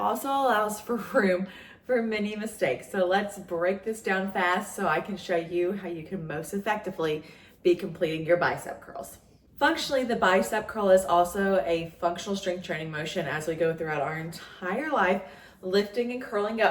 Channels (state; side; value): identical; both; correlation 1.00